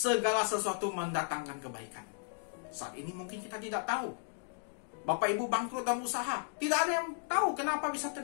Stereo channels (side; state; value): right; silent; digital silence